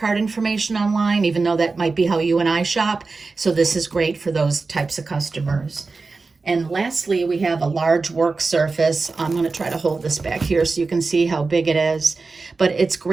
information online, even though that might be how you and I shop. So this is great for those types of customers. And lastly, we have a large work surface. I'm going to try to hold this back here so you can see how big it is. But it's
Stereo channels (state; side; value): quieter; left; 4.0 dB